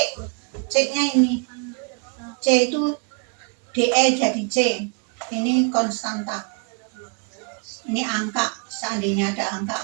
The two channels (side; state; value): left; quieter; 37.0 dB